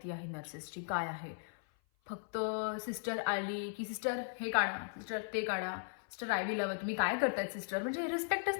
आहे नर्सेसची काय आहे. फक्त सिस्टर आली की सिस्टर हे काढा, सिस्टर ते काढा, सिस्टर आयव्ही लावा, तुम्ही काय करतायत सिस्टर, म्हणजे रिस्पेक्टच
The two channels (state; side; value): silent; right; 53 dB below the other